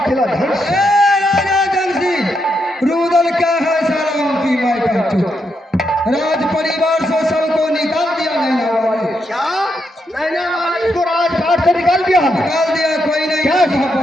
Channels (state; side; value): normal; both; correlation 0.81